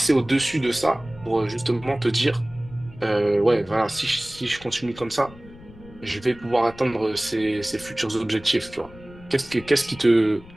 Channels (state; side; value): noise; left; rumble, 20 dB below the sound